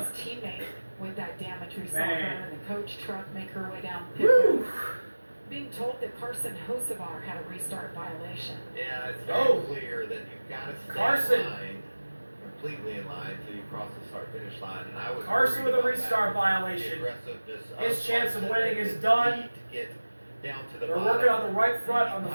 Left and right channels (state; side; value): inverted; both; correlation -1.00